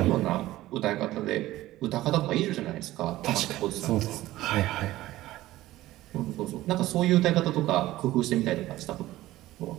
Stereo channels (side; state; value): left; quieter; 16.2 dB